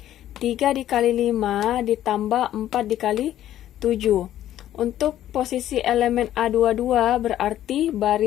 3 dikali 5 ditambah 4 dikali 7. Untuk posisi elemen A22 berarti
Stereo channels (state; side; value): quieter; right; 12.3 dB